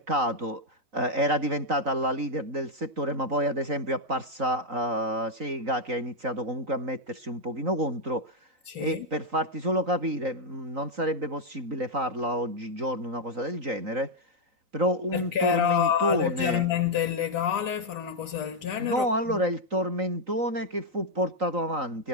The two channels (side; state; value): left; late; 3.6 ms